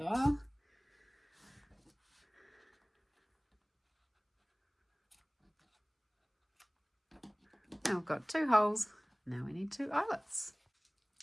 Now we've got 2 holes. Now we need 2 eyelets.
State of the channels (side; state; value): both; identical; correlation 1.00